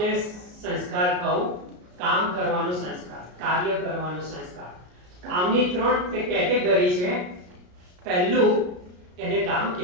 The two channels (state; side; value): late; left; 33 ms